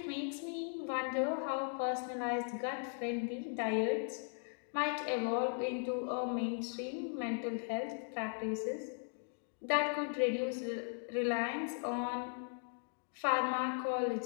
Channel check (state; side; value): silent; right; 52 dB below the other